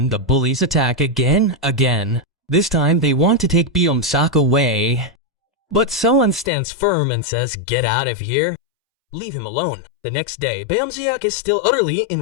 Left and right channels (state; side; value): drops out; right; at 6.5 s